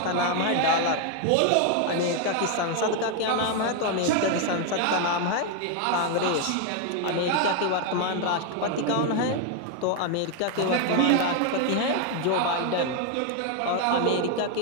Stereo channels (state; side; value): different; both; correlation 0.01